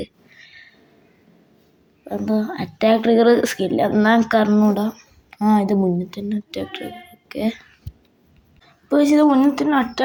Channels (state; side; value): identical; both; correlation 1.00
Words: എന്തോ അറ്റാക്ക് ട്രിഗർ സ്കില്ല് എന്നാൽ എനിക്ക് അറിഞ്ഞൂടാ. ഇത് മുന്നിൽ തന്നെ അറ്റാക്ക് ട്രിഗർ. ഓക്കെ, ഇപ്പോൾ ഇത് മുന്നിൽ തന്നെ